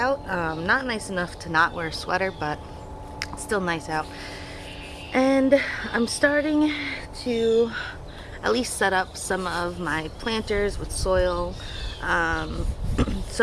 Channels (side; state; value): both; identical; correlation 1.00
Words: Not nice enough to not wear a sweater, but still nice out. And I'm starting to at least set up some of my planters with soil um,